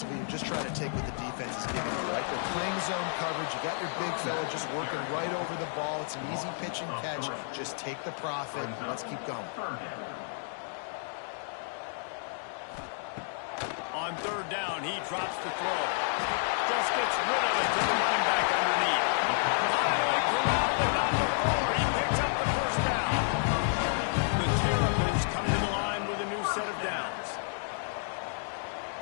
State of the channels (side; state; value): right; silent; digital silence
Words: you're just trying to take what the defense is giving you, right? They're playing zone coverage. You got your big fella just working right over the ball. It's an easy pitch and catch. Just take the profit. Let's keep going. On 3rd down, he drops the throw. Just gets rid of it to the running back underneath. Finally corralled without the floor. He picks up the 1st down. The Terrapins come to the line with a new set of downs.